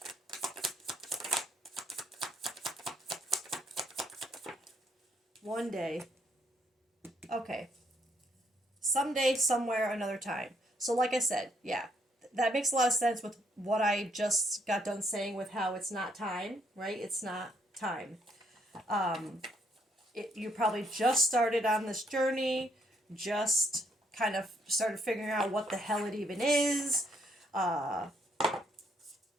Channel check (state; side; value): normal; both; correlation 0.71